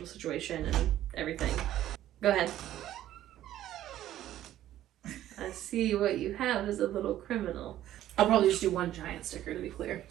situation and everything. Go ahead. I see what you have is a little criminal. I'll probably just do one giant sticker, to be clear,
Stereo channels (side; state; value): left; quieter; 12.9 dB